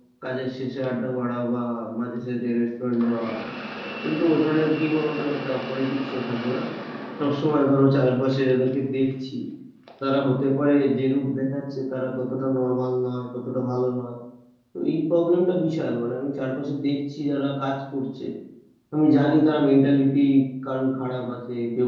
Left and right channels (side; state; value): both; identical; correlation 1.00